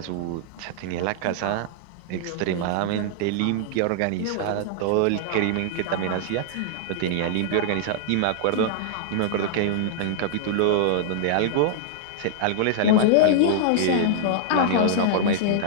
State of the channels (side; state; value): both; different; correlation -0.01